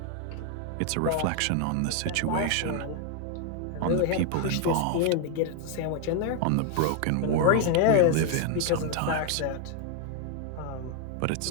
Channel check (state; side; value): different; both; correlation 0.00